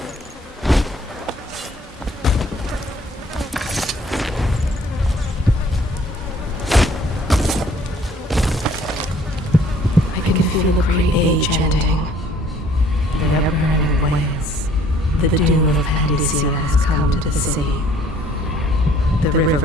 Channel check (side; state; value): both; normal; correlation 0.58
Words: Feel the great age ending. The ever-burning wails. The doom of Panacea has come to the sea. The